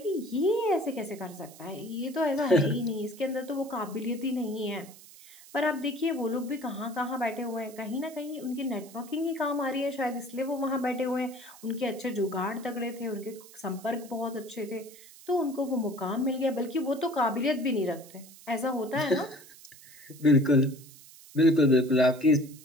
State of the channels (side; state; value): right; noise; hiss, 20 dB below the sound